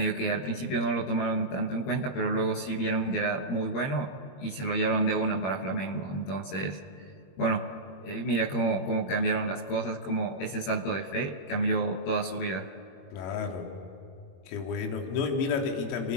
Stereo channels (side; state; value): right; late; 21 ms